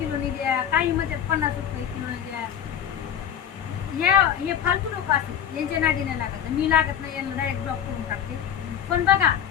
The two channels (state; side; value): quieter; right; 9.2 dB